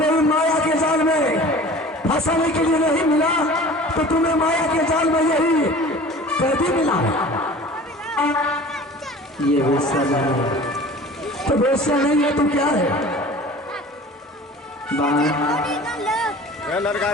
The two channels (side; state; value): both; normal; correlation 0.42